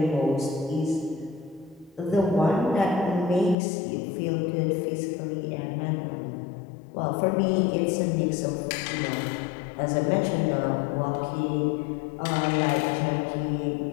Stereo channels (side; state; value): right; drops out; at 3.6 s